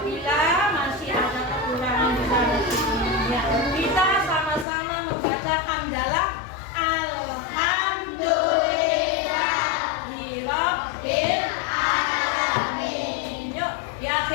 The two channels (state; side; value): drops out; right; at 4.7 s